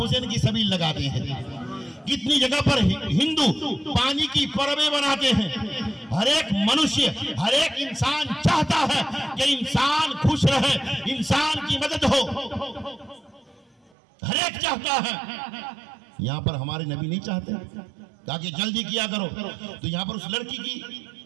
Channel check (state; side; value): drops out; left; at 13.9 s